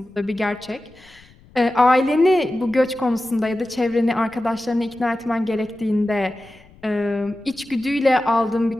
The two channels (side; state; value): left; noise; rumble, 27 dB below the sound